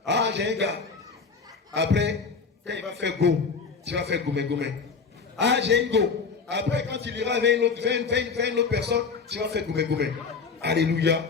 Ah, j'ai un gars. Après, quand il va faire go, tu vas faire goumé. Ah, j'ai un go. Après, quand il ira vers une autre personne, tu vas faire goumé. Alléluia.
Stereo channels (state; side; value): quieter; right; 5.1 dB